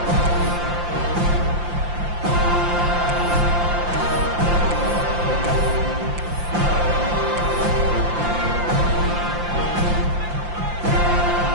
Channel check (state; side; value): late; left; 5.7 ms